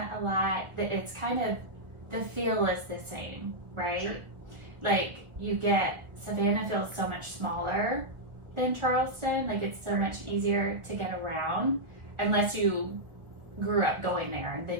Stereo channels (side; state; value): left; late; 1.5 ms